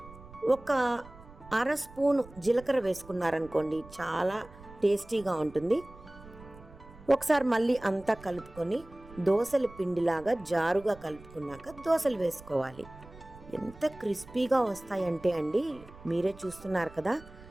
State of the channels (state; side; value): noise; right; rumble, 20 dB below the sound